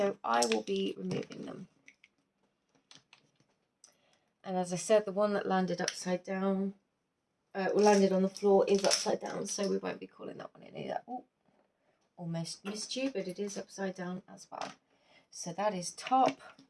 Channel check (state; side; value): identical; both; correlation 1.00